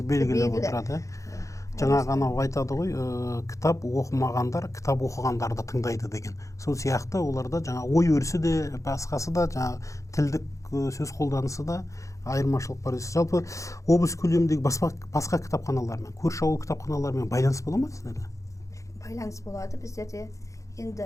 белгілі отырады. Жаңа ғана айтады ғой, кітап оқымағандар кітап оқығандарды тыңдайды деген. Сол сияқты оларда жаңа ой өрісі де, басқасы да, жаңа тілдік сөз қолданысы да айырмашылық бар. Жалпы облыс көлеміндегі басқа кітапханалармен, көрші ауыл кітапханалармен байланыс бола ма сіздерде? Байланыс болады. Біздерде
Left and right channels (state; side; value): late; right; 0.15 ms